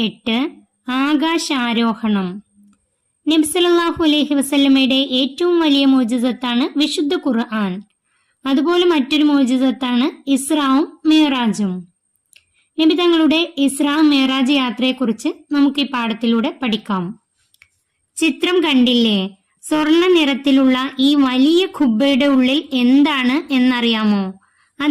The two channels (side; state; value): both; identical; correlation 1.00